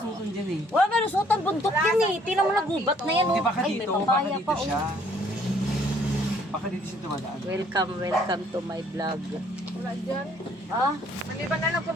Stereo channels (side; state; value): both; normal; correlation 0.62